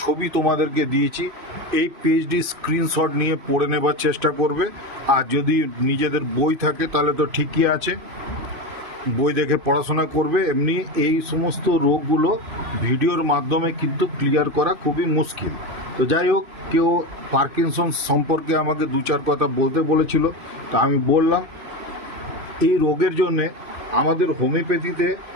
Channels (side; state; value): left; late; 2.6 ms